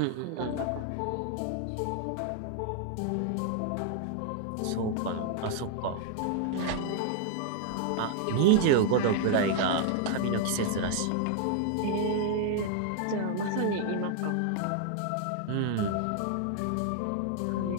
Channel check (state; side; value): different; both; correlation 0.00